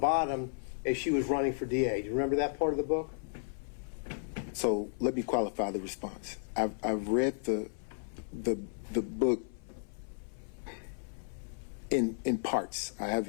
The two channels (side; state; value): right; silent; 55 dB below the other